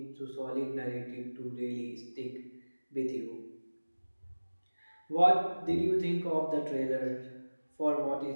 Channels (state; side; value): inverted; both; correlation -1.00